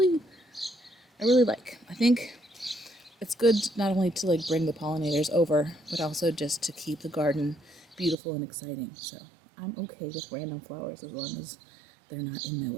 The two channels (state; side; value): drops out; left; at 8.2 s